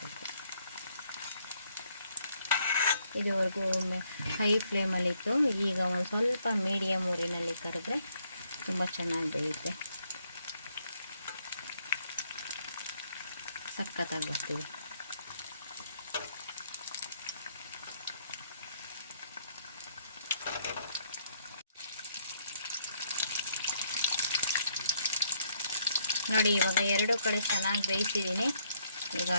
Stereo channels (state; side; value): inverted; both; correlation -0.71